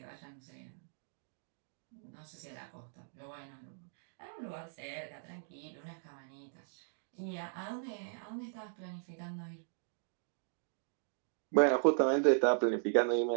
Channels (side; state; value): left; silent; digital silence